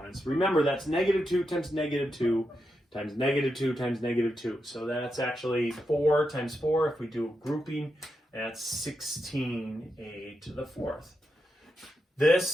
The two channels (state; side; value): normal; both; correlation 0.86